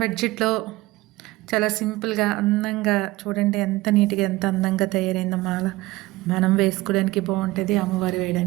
బడ్జెట్లో చాలా సింపుల్గా అందంగా చూడండి, ఎంత నీట్గా ఎంత అందంగా తయారైందో మాల. మనం వేసుకోవడానికి బాగుంటుంది, అమ్మవారు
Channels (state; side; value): quieter; left; 19.3 dB